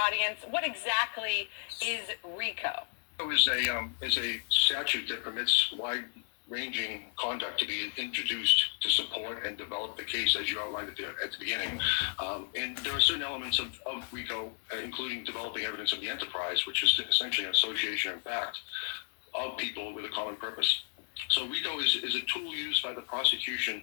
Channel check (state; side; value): silent; right; 56 dB below the other